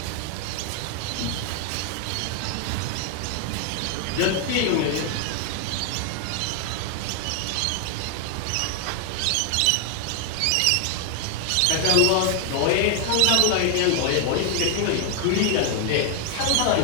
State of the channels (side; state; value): both; different; correlation 0.00